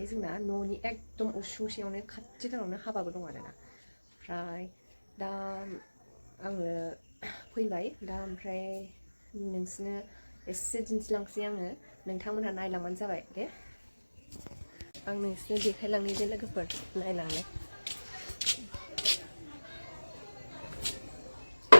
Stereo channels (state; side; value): inverted; both; correlation -1.00